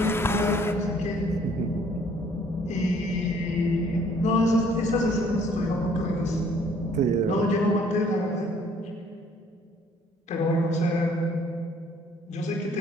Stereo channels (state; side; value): normal; both; correlation 0.60